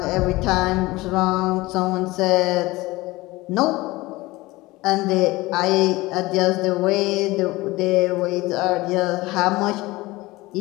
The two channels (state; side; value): quieter; right; 20.3 dB